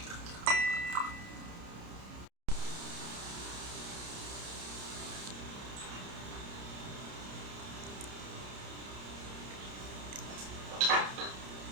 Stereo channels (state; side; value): late; left; 30 ms